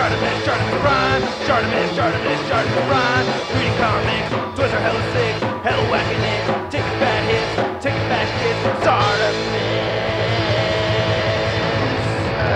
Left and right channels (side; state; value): both; identical; correlation 1.00